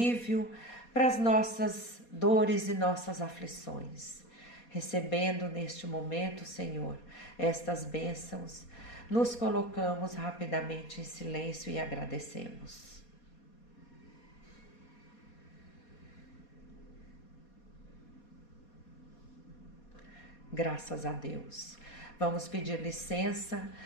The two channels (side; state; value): right; late; 4.2 ms